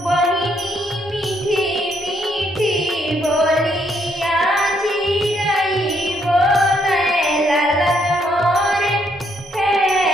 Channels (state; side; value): normal; both; correlation 0.72